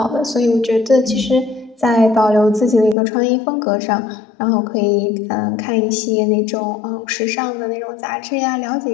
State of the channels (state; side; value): drops out; right; at 3.0 s